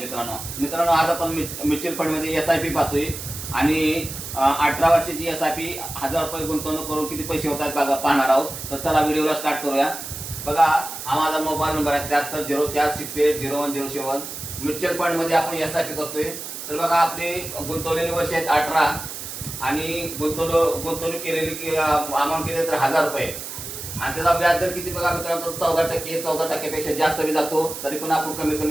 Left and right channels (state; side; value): noise; right; hiss, 9 dB below the sound